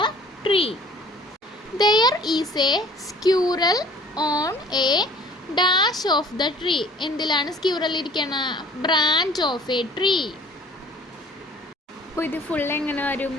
tree. There is a squirrel on a dash of the tree. എന്തിലാണ് squirrel ഇരിക്കണ? Branch of a tree. അപ്പോൾ ഇത് full എങ്ങനെ വരും?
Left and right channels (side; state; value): both; normal; correlation 0.52